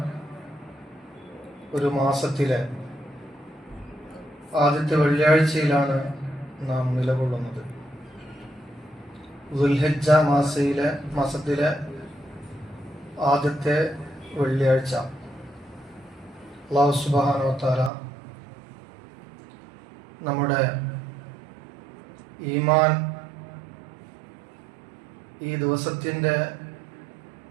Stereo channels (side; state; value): left; drops out; at 17.9 s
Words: ഒരു മാസത്തിലെ ആദ്യത്തെ വെള്ളിയാഴ്ചയിലാണ് നാം നിലകൊള്ളുന്നത്. ദുൽഹിജ്ജ മാസത്തിലെ ആദ്യത്തെ വെള്ളിയാഴ്ച. അല്ലാഹു സുബ്ഹാനഹു വ തആല നമ്മുടെ ഈമാൻ ഈ ദിവസത്തിൻ്റെ